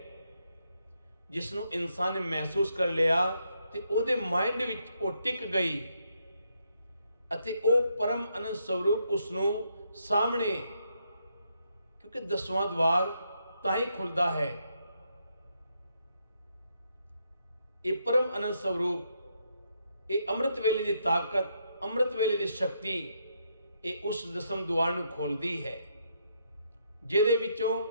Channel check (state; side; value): inverted; both; correlation -0.77